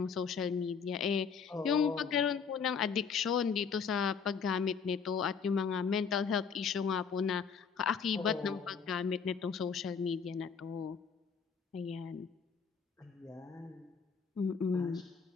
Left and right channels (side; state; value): right; quieter; 6.1 dB